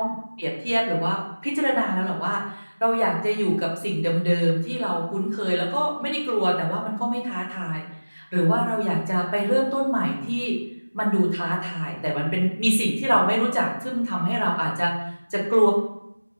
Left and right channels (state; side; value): inverted; both; correlation -1.00